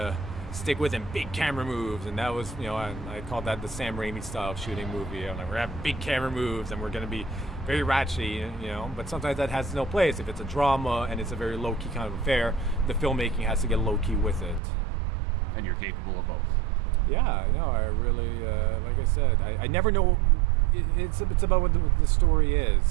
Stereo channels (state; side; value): drops out; left; at 14.6 s